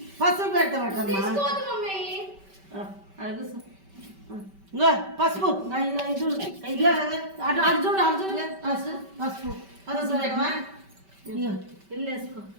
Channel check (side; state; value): left; late; 5.2 ms